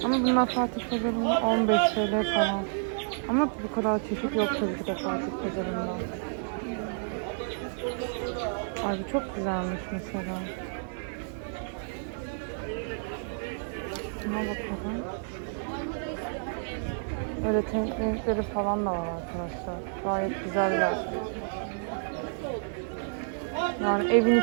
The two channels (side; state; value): left; silent; digital silence